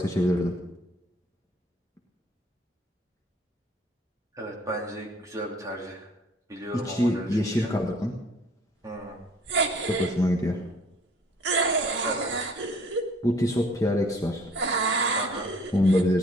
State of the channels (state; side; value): normal; both; correlation 0.55